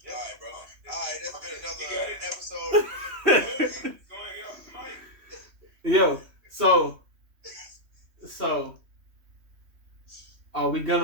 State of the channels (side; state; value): left; late; 3.1 ms